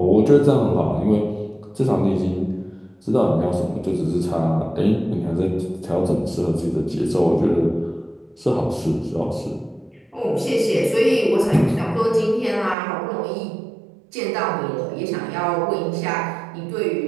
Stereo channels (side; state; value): left; drops out; at 12.8 s